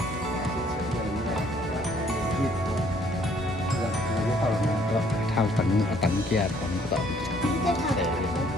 Thao tận kia còn tận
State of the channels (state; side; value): normal; both; correlation 0.63